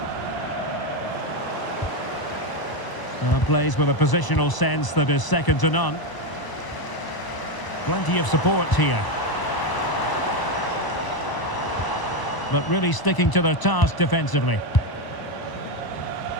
Plays with a positional sense that is second to none. Plenty of support here. But really sticking to their task defensively.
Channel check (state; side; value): late; right; 1.0 ms